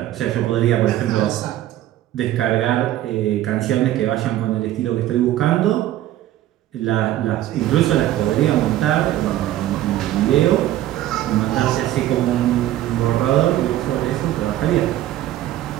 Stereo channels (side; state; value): left; quieter; 13.6 dB